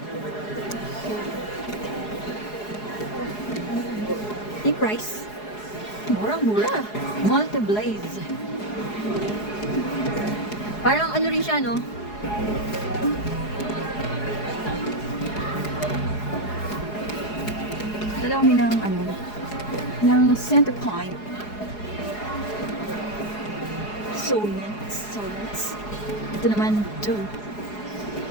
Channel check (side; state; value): right; late; 4.8 ms